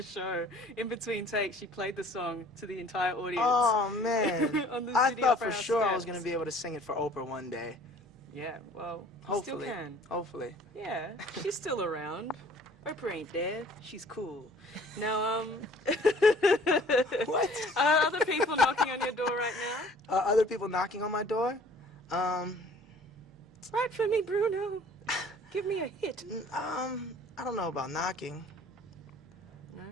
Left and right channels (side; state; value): both; normal; correlation 0.52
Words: In between takes, she played the song to the entire audience. Oh, man. On the I City thought Opera for House sure I steps. was going to be able to sing it for Oprah one day. Yeah, well, Hopefully. still can. Hopefully. Yeah, she's still around. Oprah ain't dead. She's cool. Now, What? Are other people knocking on your door right now? Other people knocking on my door? Write for me, Bruno. Give me a hit. I don't know about knocking.